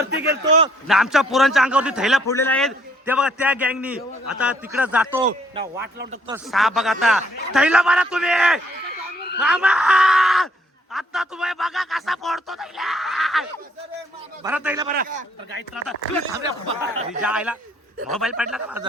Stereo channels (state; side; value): normal; both; correlation 0.65